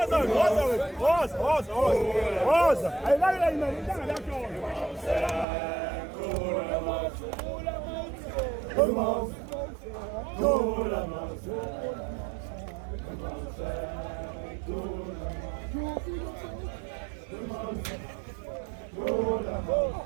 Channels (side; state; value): left; drops out; at 5.5 s